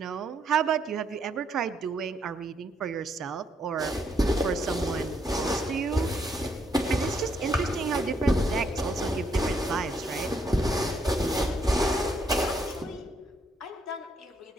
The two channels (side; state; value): both; normal; correlation 0.74